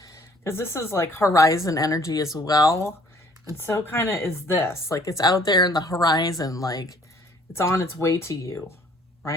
because this is like horizon energy as well. And so kind of is this. Like, it's out there in the horizon, like it's on its way to you,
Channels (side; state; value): both; normal; correlation 0.58